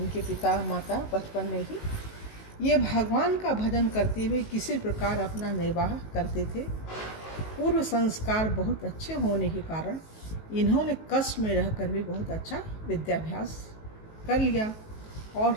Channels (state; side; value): late; right; 19 ms